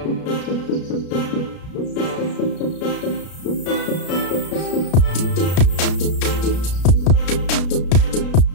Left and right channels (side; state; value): right; late; 33 ms